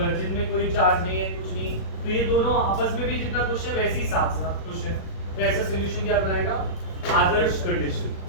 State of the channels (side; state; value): right; late; 37 ms